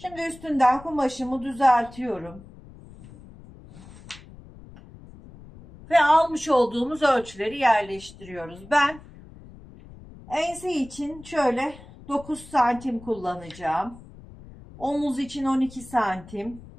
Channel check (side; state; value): left; noise; rumble, 19 dB below the sound